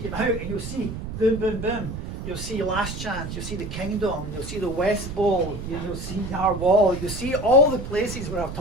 out and you'll see boom, boom, boom. You'll see Last Chance, you'll see the Kingdom, you'll see the West Bowl, you'll see our wall, you'll see all the places where I've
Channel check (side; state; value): right; noise; rumble, 7 dB below the sound